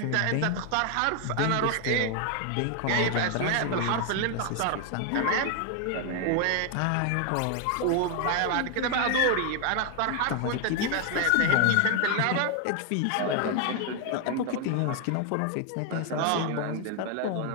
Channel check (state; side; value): different; both; correlation 0.01